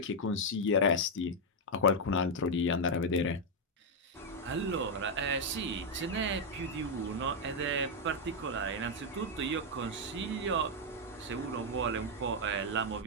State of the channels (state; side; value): normal; both; correlation 0.00